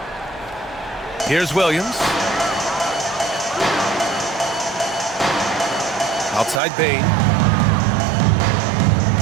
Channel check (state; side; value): drops out; left; at 6.6 s